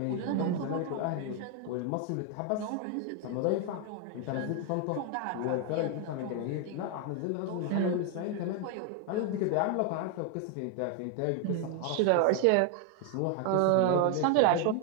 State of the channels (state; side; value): different; both; correlation 0.01